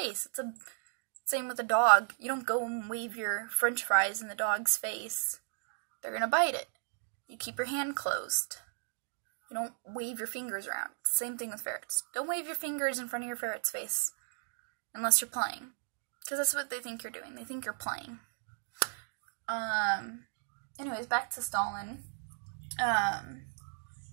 It's the same with a dog. You don't go and wave your french fries in the dog's face. They're going to bite it. You keep your hand closed. You don't wave your fingers around. Same thing with ferrets. Don't wave your fingers in front of your ferret's face unless you're playing, because that's what they think you're doing. They think you're playing. Anyways, back to Stalin.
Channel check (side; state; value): left; silent; digital silence